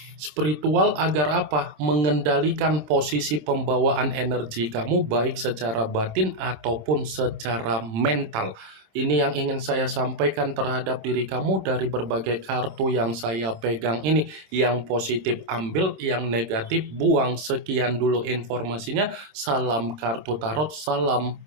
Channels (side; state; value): left; late; 26 ms